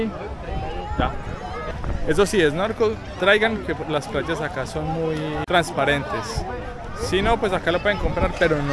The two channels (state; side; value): identical; both; correlation 1.00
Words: ya. Eso sí, snorkel, traigan que las playas acá son muy transparentes. Si no, pues acá lo pueden comprar, pero